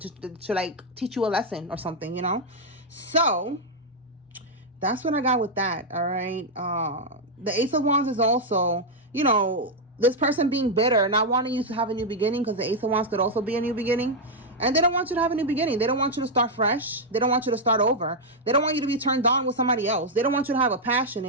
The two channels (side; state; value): both; normal; correlation -0.01